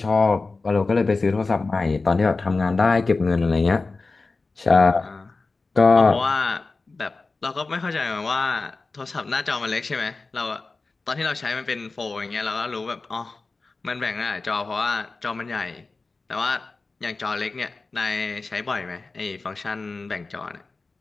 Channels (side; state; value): right; quieter; 3.8 dB